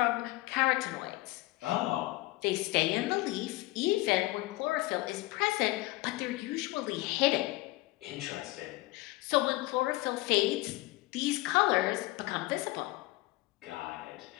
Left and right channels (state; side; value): quieter; right; 20.0 dB